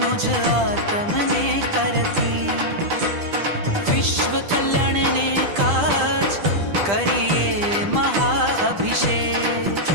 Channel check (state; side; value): late; left; 10 ms